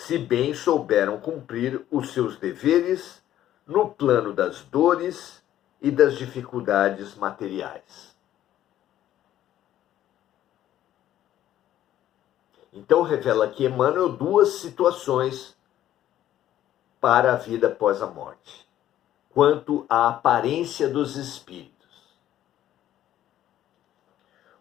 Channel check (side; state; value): right; quieter; 12.3 dB